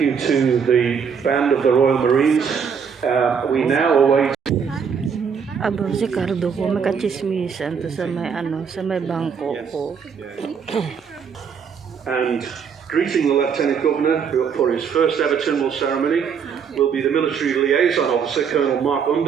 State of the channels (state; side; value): quieter; left; 6.7 dB